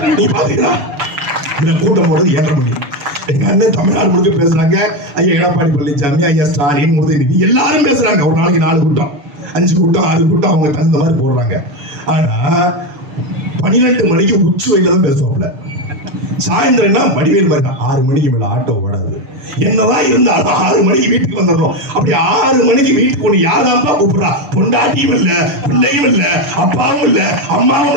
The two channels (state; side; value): late; left; 6.8 ms